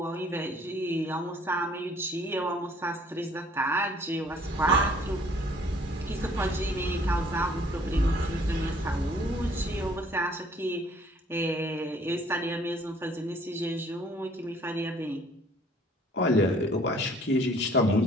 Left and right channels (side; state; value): both; normal; correlation 0.58